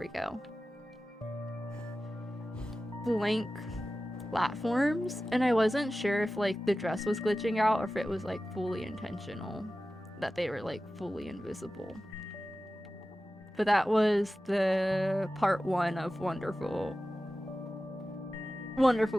we go, blank platforms, and I wasn't sure if like the dress was glitching out or if it was like fully intentional that they were like fully invisible. But that was the part 1 of Wonderful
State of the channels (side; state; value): both; normal; correlation 0.95